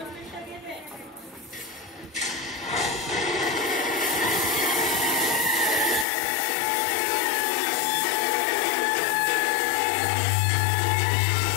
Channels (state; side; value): drops out; right; at 6.1 s